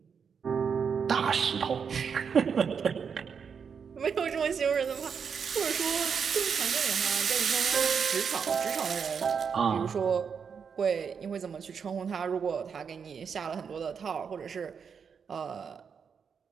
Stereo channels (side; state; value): left; quieter; 6.5 dB